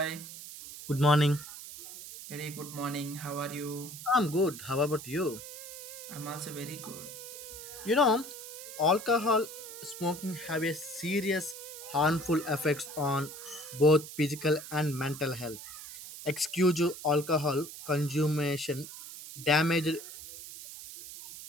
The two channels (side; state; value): right; noise; hiss, 12 dB below the sound